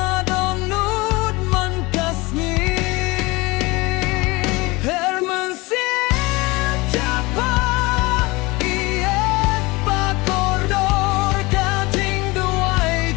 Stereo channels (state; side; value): quieter; right; 23.3 dB